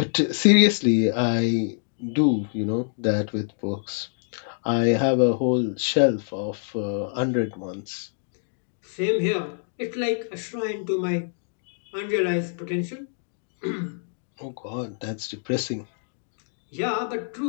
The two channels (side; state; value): right; silent; digital silence